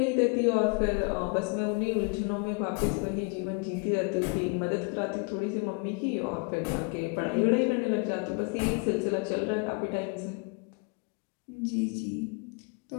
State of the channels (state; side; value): quieter; right; 33.9 dB